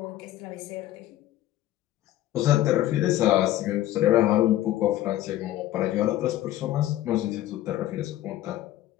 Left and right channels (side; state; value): right; quieter; 14.2 dB